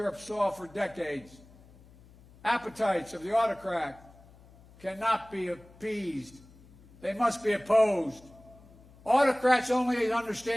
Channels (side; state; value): left; noise; hum, 24 dB below the sound